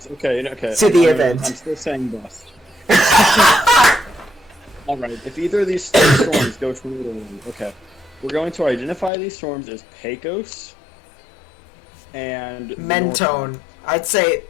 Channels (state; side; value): drops out; right; at 9.1 s